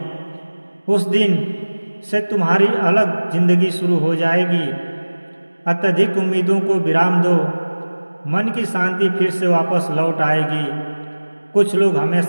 उस दिन से तुम्हारी अलग जिंदगी शुरू हो जाएगी। अत्यधिक उम्मीदों को विराम दो, मन की शांति फिर से वापस लौट आएगी। कुछ लोग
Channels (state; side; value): inverted; both; correlation -1.00